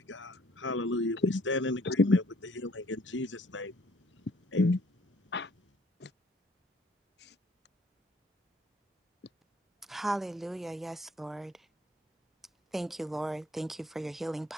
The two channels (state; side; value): normal; both; correlation 0.59